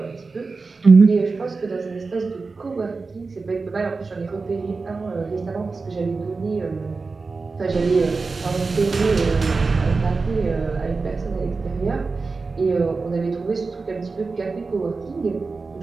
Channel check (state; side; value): quieter; left; 4.1 dB